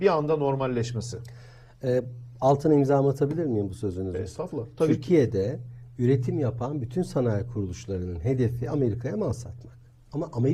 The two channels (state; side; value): identical; both; correlation 1.00